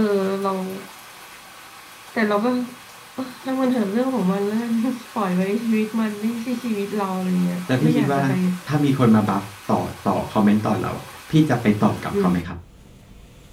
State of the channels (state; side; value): identical; both; correlation 1.00